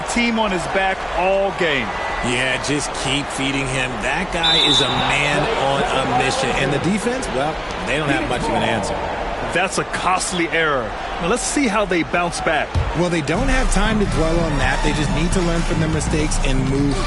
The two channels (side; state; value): both; identical; correlation 1.00